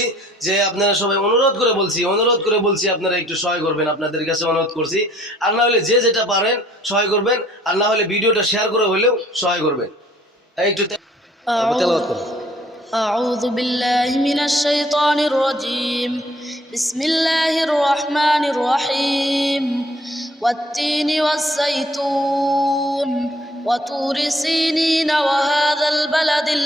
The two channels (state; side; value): normal; both; correlation 0.60